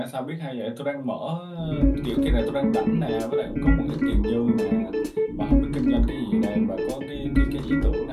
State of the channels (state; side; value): identical; both; correlation 1.00